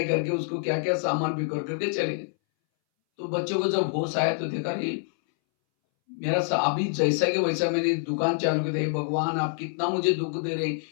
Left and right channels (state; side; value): silent; right; 61 dB below the other